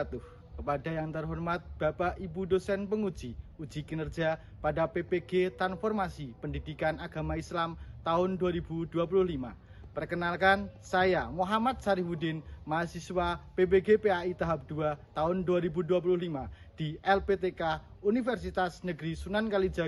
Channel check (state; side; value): identical; both; correlation 1.00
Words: Kepada yang terhormat Bapak Ibu dosen penguji uji kinerja pada PPG Transformasi Pendidikan Agama Islam tahun 2025. Perkenalkan, saya Muhammad Sarifudin, mahasiswa PPG PAI tahap 2 tahun 2025 di LPTK Universitas Negeri Sunan